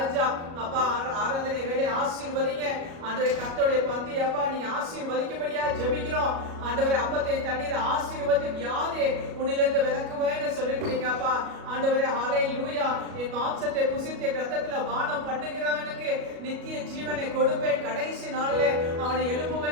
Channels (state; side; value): late; left; 37 ms